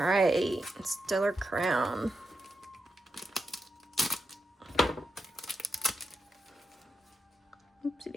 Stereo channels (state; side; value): normal; both; correlation 0.85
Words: Stellar Crown. Oopsie